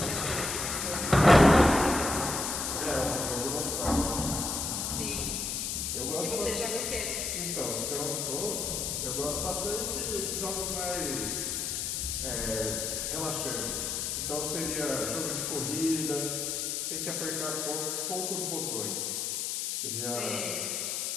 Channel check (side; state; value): left; noise; hiss, 1 dB below the sound